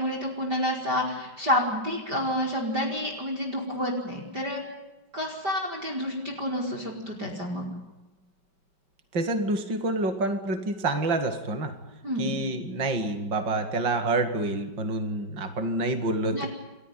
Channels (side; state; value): left; late; 5.2 ms